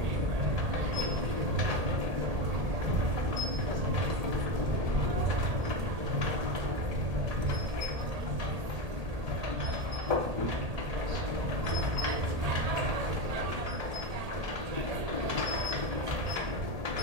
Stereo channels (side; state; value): left; late; 1.8 ms